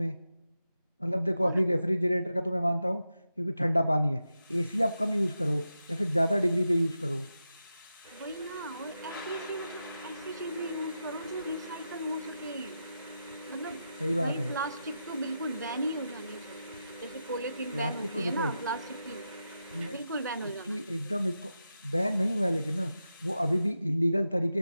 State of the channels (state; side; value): inverted; both; correlation -0.89